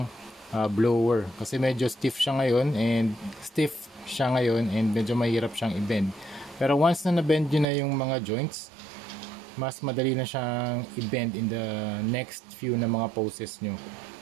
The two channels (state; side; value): drops out; left; at 7.7 s